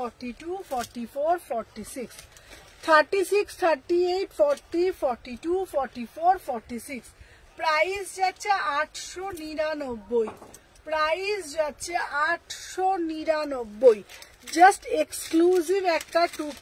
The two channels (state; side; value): identical; both; correlation 1.00